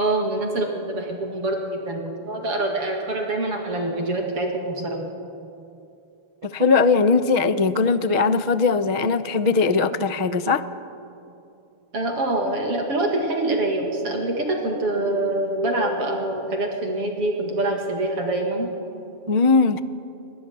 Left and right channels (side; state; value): left; late; 6.4 ms